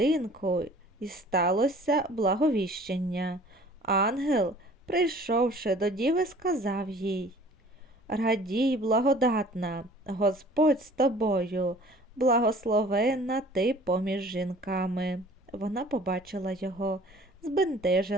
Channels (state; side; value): normal; both; correlation 0.50